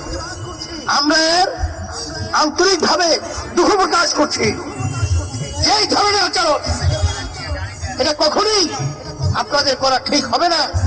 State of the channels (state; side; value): identical; both; correlation 1.00